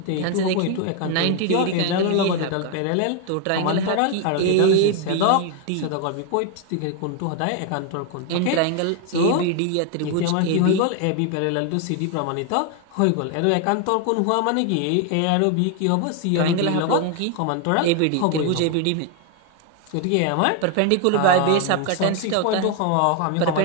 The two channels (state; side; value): different; both; correlation 0.01